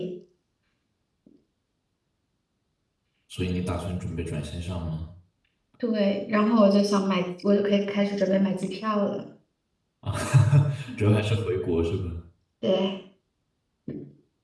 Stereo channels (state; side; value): identical; both; correlation 1.00